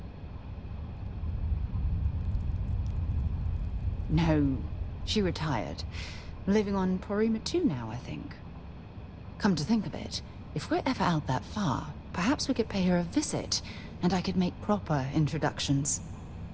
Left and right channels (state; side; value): identical; both; correlation 1.00